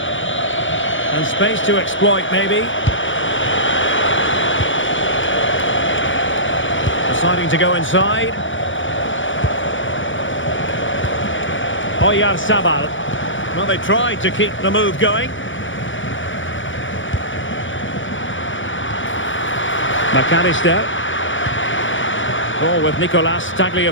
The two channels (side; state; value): right; late; 0.56 ms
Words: space to exploit, maybe. Deciding to go inside. Oyarzabal. Well, they tried to keep the move going. McAllister. Ball with Nicolas